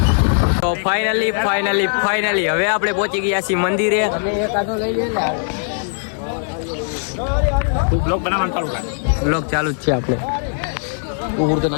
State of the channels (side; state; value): right; silent; digital silence